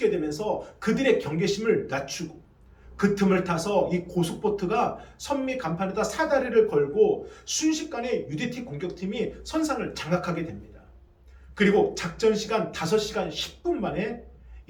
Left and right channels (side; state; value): both; identical; correlation 1.00